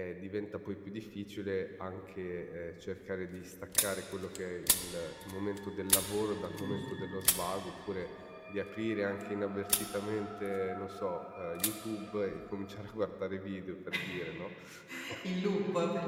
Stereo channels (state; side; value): identical; both; correlation 1.00